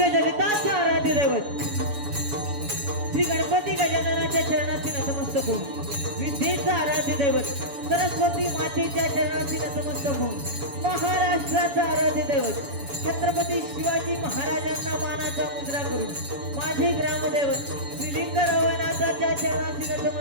जगताचे आराध्य दैवत श्री गणपती गजाननाच्या चरणाची नतमस्तक होऊन, विद्येचा आराध्य दैवत सरस्वती मातेच्या चरणाची नतमस्तक होऊन, महाराष्ट्राचा आराध्य दैवत छत्रपती शिवाजी महाराजांना मानाचा मुद्रा करून माझे ग्रामदैवत श्रीलिंगरावनाथाच्या चरणाची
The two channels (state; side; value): late; left; 7.1 ms